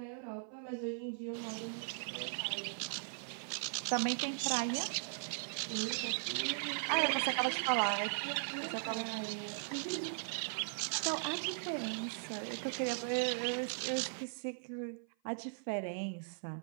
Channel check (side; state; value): left; silent; 52 dB below the other